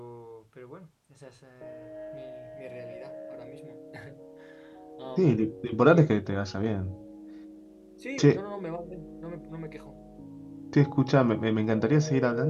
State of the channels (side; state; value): both; identical; correlation 1.00